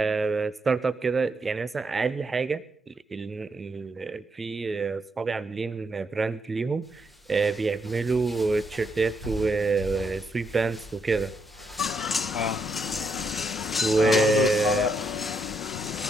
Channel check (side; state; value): both; normal; correlation 0.78